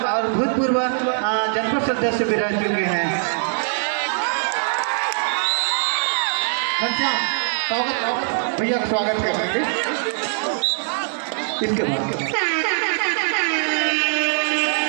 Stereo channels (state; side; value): silent; left; digital silence